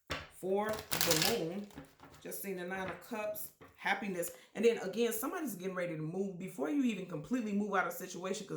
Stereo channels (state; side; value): identical; both; correlation 1.00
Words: for the moon. Just seen the Nine of Cups. Happiness. And then again, somebody's getting ready to move before you even completely move out of the situation,